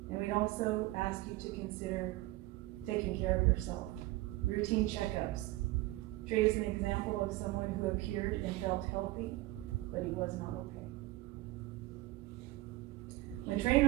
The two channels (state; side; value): quieter; left; 18.7 dB